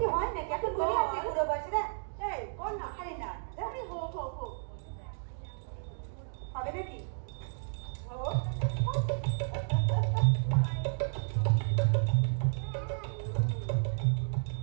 হয় নাকি? এখন বলে আছে বুড়ো বয়সে না। এই বল না। আরে না আরে হো হো হো হবে নাকি?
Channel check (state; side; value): silent; left; digital silence